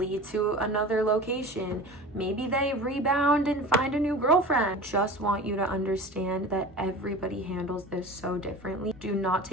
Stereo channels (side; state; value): both; normal; correlation 0.36